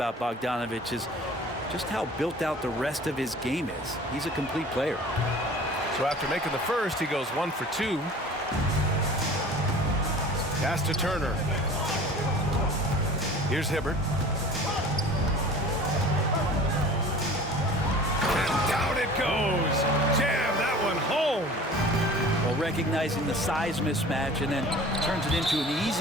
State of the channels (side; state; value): both; normal; correlation 0.43